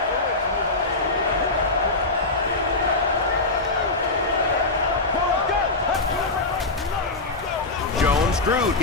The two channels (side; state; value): right; quieter; 3.2 dB